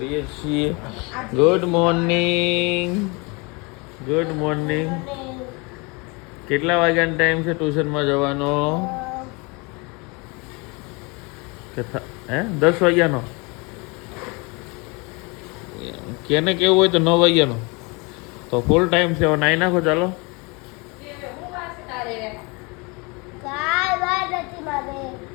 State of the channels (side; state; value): right; quieter; 28.8 dB